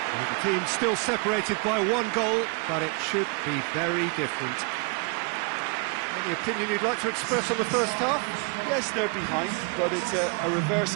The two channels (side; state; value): left; quieter; 32.4 dB